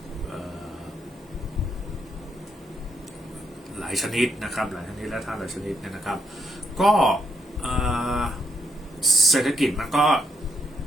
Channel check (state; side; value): normal; both; correlation 0.76